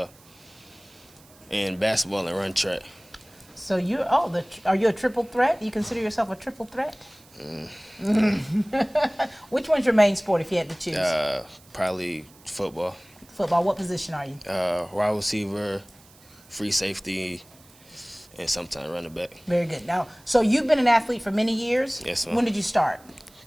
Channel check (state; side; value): noise; right; hiss, 26 dB below the sound